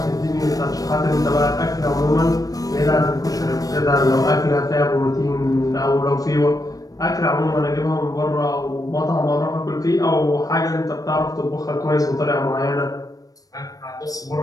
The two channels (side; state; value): right; late; 0.18 ms